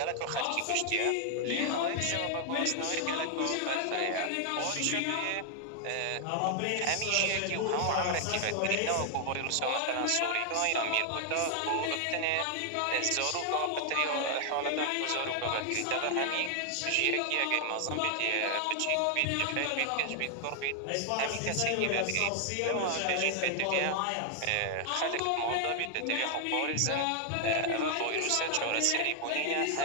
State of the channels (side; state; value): both; different; correlation 0.00